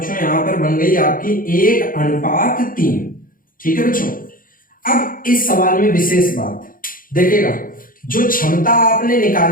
यहां पर बन गई आपकी 1:3। ठीक है बच्चों। अब इस सवाल में विशेष बात देखिएगा, जो क्षमता आपने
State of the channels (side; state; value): right; late; 0.40 ms